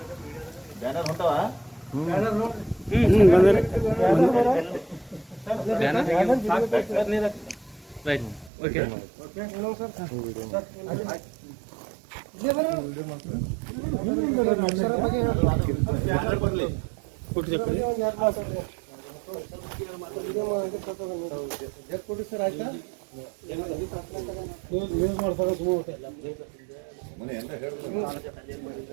ಬ್ಯಾನರ್ ಹೊಂಟವ ರೈಟ್ ಓಕೆ ಸರ್ ಆಯ್ತಾ ಯೂಸ್ ಮಾಡ್ತಾರೆ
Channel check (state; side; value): drops out; left; at 8.5 s